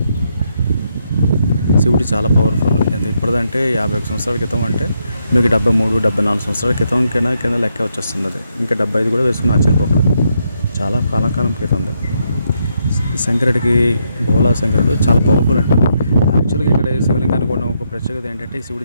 శివుడు చాలా పవర్ఫుల్. ఎంత ఇప్పటిదంటే 51 సంవత్సరాల క్రితం అంటే మీకు 73, 74 సంవత్సరాల క్రితం కింద లెక్క వచ్చేస్తుంది. అది ఇంకా 75 కూడా వేసుకుని ఆశ్చర్యపోకూడదు. చాలా కాలం క్రితం ఉంది. శంకరుడికి భోలా శంకరుడు చాలా పవర్ఫుల్ అంటారు. యాక్చువల్గా ఇక్కడ శివలింగానికి ఉన్న ఒక ప్రత్యేకత ఏంటంటే, ఈ శివుడి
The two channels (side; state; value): both; inverted; correlation -0.78